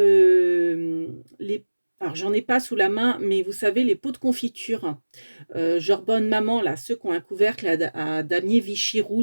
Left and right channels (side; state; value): both; inverted; correlation -1.00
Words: alors j'en ai pas sous la main, mais vous savez les pots de confiture, genre Bonne Maman là, ceux qui ont un couvercle à damier Vichy